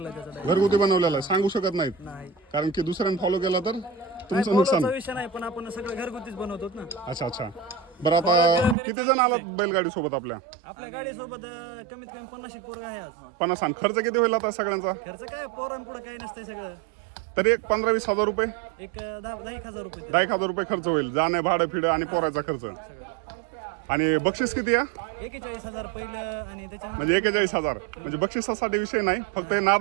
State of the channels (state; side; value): drops out; left; at 8.8 s